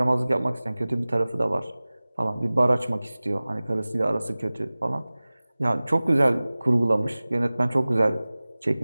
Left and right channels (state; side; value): inverted; both; correlation -0.99